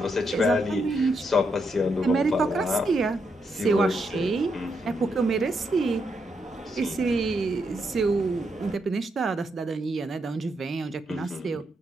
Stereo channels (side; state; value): both; normal; correlation 0.80